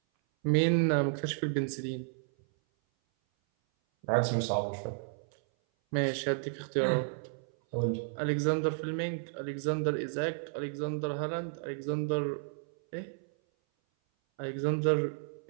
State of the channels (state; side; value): silent; left; 56 dB below the other